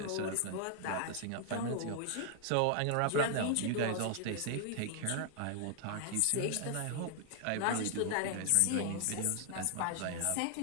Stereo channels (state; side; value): different; both; correlation 0.00